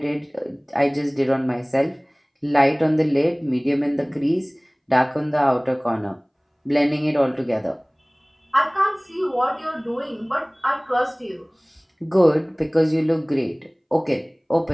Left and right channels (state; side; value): identical; both; correlation 1.00